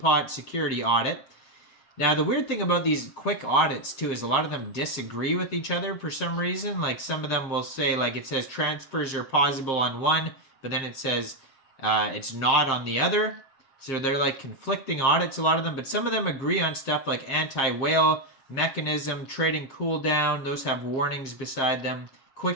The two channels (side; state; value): right; late; 7.5 ms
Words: security audit. Now the weird thing about these quick audits too is a lot of them disagree with each other for some reason. Like some of them will say, like it says transfers are possible on one, but then it says it's not on the other. So they're like conflicting audits, a lot of them, but some of them agree on stuff like anti-whale mechanism, trading cooldown. Those have warnings beside them.